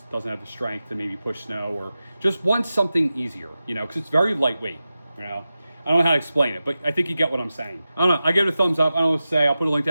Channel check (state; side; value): inverted; both; correlation -0.94